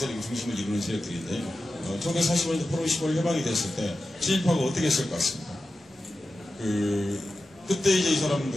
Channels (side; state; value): both; normal; correlation 0.93